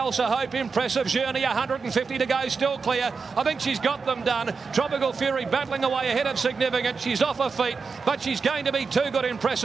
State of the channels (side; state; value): left; quieter; 5.0 dB